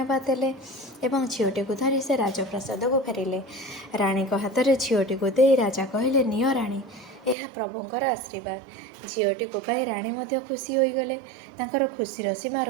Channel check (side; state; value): left; drops out; at 7.4 s